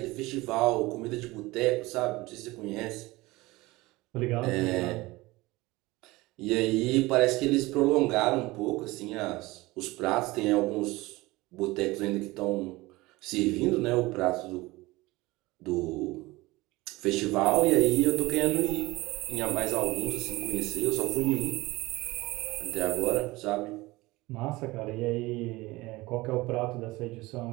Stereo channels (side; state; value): left; quieter; 20.8 dB